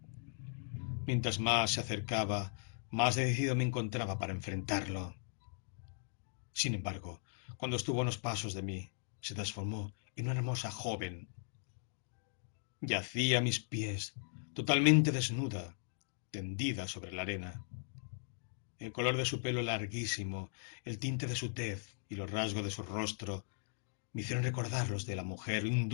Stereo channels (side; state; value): right; silent; digital silence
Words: Mientras más se acercaba, más decidido me encontraba para enfrentarlo. Sin embargo, cuando estuvo a unos pasos de mí, se transformó en una hermosa joven. Yacía a mis pies, totalmente desnuda, tendida sobre la arena. El color de su pelo larguísimo, el tinte de su tez y los rasgos de su rostro me hicieron recordar los de la mujer